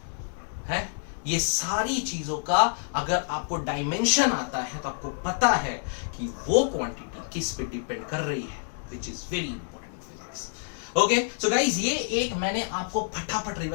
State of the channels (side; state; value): right; silent; digital silence